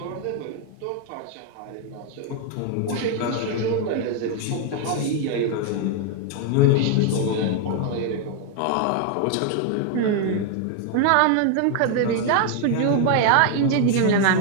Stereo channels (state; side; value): different; both; correlation 0.00